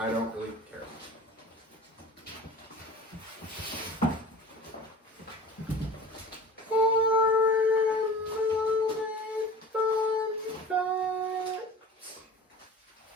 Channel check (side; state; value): both; normal; correlation 0.39